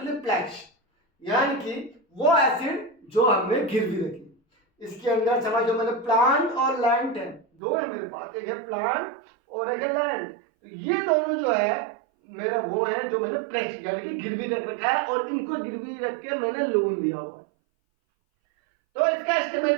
प्लेज, यानी कि वो एसिड जो हमने गिरवी रखी। इसके अंदर समझो मैंने प्लांट और लैंड है, 2 है मेरे पास, एक है प्लांट और एक है लैंड। तो ये दोनों जो है मेरा वो है जो मैंने प्लेज यानी कि गिरवी रख रखा है, और इनको गिरवी रख के मैंने लोन लिया हुआ है। तो इसका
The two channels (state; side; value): drops out; left; at 7.5 s